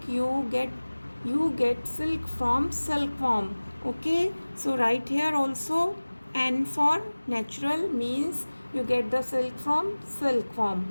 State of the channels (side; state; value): both; inverted; correlation -1.00